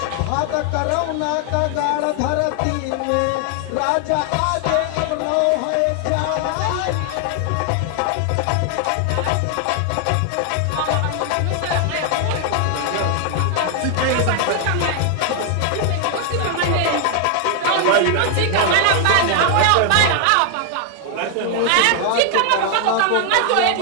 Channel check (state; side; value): different; both; correlation 0.00